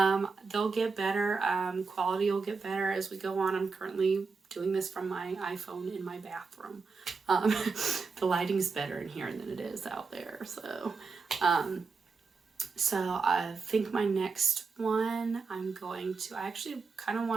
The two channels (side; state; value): left; quieter; 4.7 dB